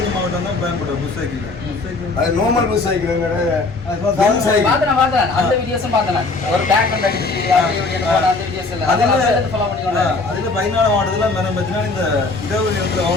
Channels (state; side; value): quieter; right; 3.6 dB